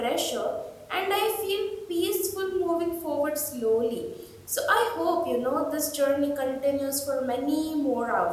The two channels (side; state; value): both; identical; correlation 1.00